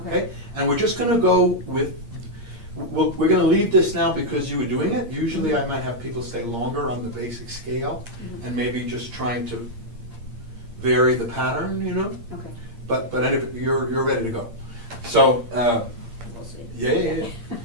Okay? And we're just going to go with, we're going to leave this now because you were doing it. Usually I might have people stay longer on the basic scale, and maybe just trying to vary the pattern, you know? Okay. But anyway, you're ready to go. So, We'll see. yeah.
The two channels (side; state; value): left; late; 8.7 ms